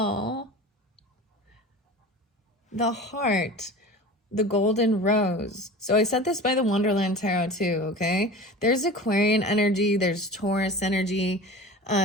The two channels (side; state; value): both; normal; correlation 0.36